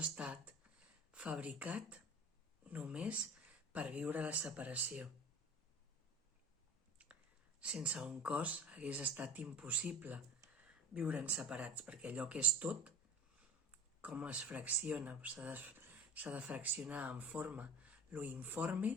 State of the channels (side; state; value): both; normal; correlation 0.36